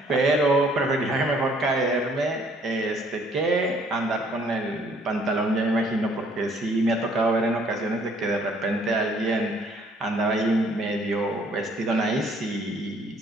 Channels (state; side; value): normal; both; correlation 0.61